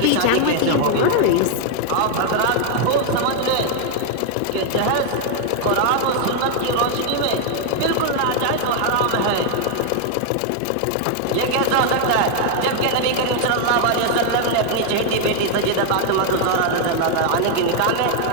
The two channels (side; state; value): both; different; correlation 0.00